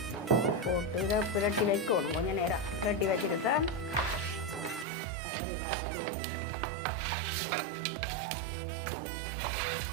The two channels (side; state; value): left; drops out; at 4.9 s